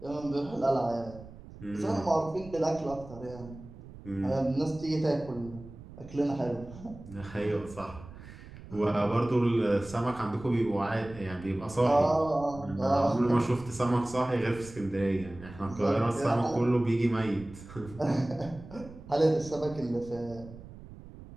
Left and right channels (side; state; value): right; noise; rumble, 16 dB below the sound